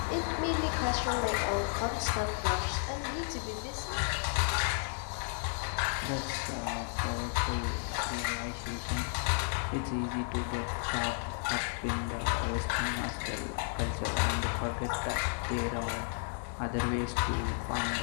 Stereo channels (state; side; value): silent; right; 56 dB below the other